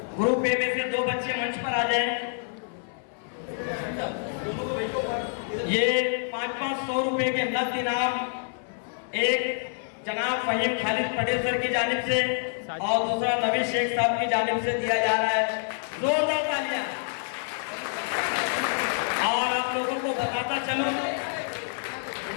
ग्रुप ए में से 2 बच्चे मंच पर आ जाएं। ये 500 रुपए के नकद इनाम एक जनाब फहीम खालिद पटेल सर की जानिब से और दूसरा नवीन शेख साहब की जानिब से दिया जा रहा है। जोरदार तालियां। और आप लोगों को बताता चलो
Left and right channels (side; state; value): right; silent; 60 dB below the other